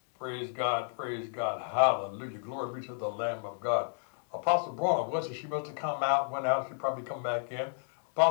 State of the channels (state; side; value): silent; right; digital silence